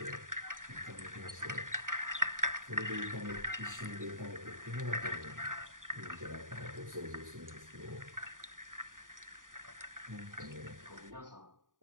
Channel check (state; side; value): late; left; 0.89 ms